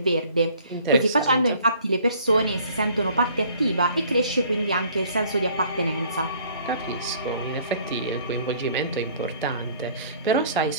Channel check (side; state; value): both; inverted; correlation -0.57